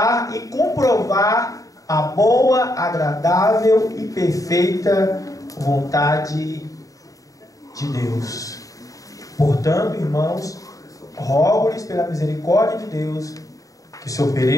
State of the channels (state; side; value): late; right; 0.16 ms